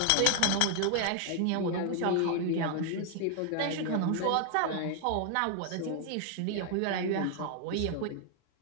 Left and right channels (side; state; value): both; different; correlation 0.00